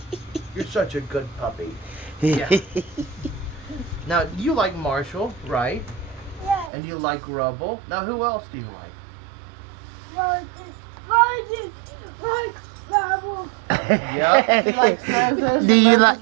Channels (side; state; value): left; drops out; at 6.7 s